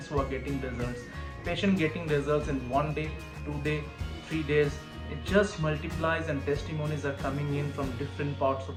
who are getting results. Patient getting results in 1 day, 2 day, 3 days. It just multiplies, and testimonies are coming in from different parts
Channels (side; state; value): both; identical; correlation 1.00